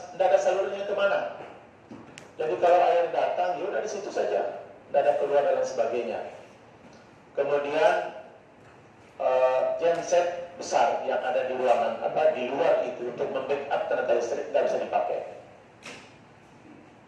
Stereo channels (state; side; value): identical; both; correlation 1.00